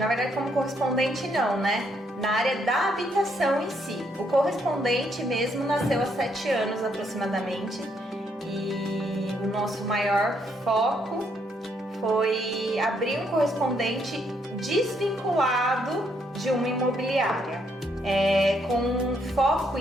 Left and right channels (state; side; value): normal; both; correlation 0.73